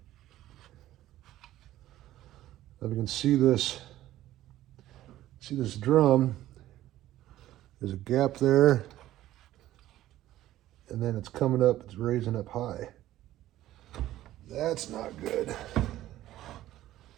If you can see this drum, there's a gap there, and then it's coming up, it's raising up high. That's not good.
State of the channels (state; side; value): quieter; left; 14.2 dB